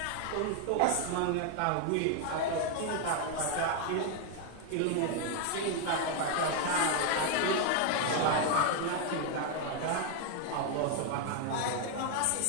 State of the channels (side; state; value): both; different; correlation 0.01